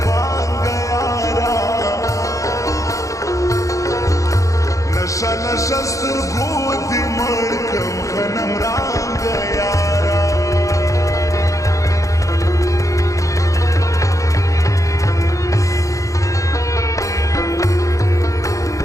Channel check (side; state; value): right; late; 0.16 ms